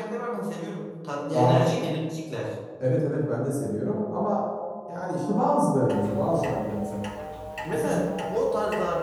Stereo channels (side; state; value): both; identical; correlation 1.00